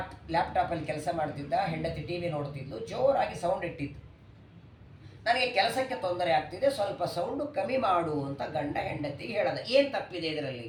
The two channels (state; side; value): identical; both; correlation 1.00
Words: ಲ್ಯಾಪ್ಟಾಪಲ್ಲಿ ಕೆಲಸ ಮಾಡ್ತಿದ್ದ, ಹೆಂಡತಿ ಟಿ ವಿ ನೋಡ್ತಿದ್ಲು. ಜೋರಾಗಿ ಸೌಂಡ್ ಇಟ್ಟಿತ್ತು. ನನಗೆ ಕೆಲಸಕ್ಕೆ ತೊಂದರೆ ಆಗ್ತಿದೆ, ಸ್ವಲ್ಪ ಸೌಂಡು ಕಮ್ಮಿ ಮಾಡು ಅಂತ ಗಂಡ ಹೆಂಡತಿಗೆ ಹೇಳದ. ಏನು ತಪ್ಪಿದೆ ಇದರಲ್ಲಿ?